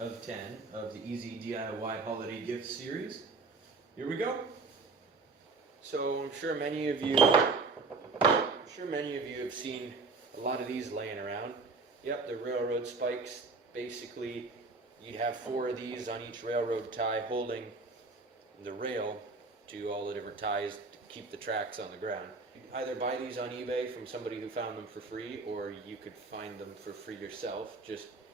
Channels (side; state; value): left; quieter; 3.9 dB